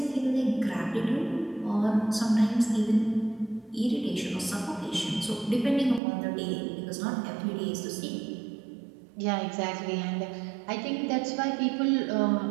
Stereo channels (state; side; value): drops out; left; at 6.0 s